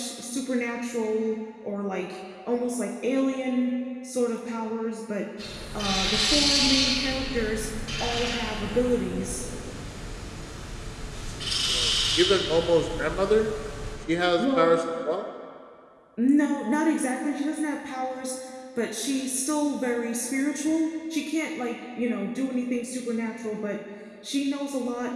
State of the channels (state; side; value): identical; both; correlation 1.00